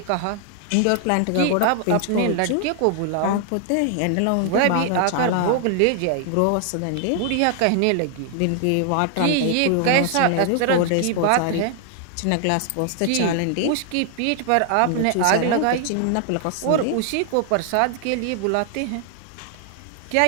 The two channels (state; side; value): different; both; correlation 0.00